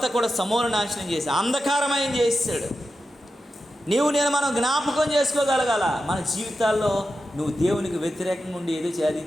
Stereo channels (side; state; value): both; normal; correlation 0.90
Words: కూడా సమూల నాశనం చేసి అంధకారమయం చేసాడు. నేను మనం జ్ఞాపకం చేసుకోగలగాల మన జీవితాల్లో నువ్వు దేవునికి వ్యతిరేకంగా ఉండి ఏదో